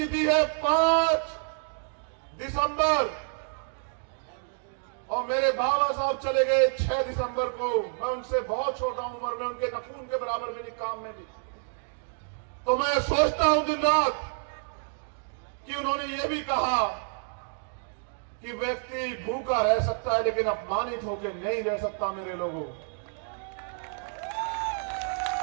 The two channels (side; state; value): left; silent; 59 dB below the other